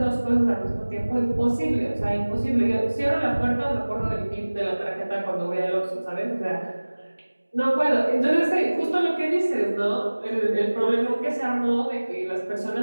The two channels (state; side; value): inverted; both; correlation -1.00